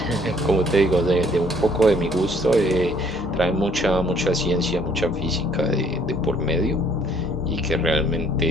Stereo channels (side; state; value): both; normal; correlation 0.62